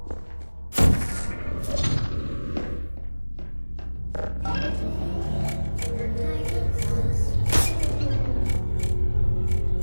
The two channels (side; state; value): both; inverted; correlation -1.00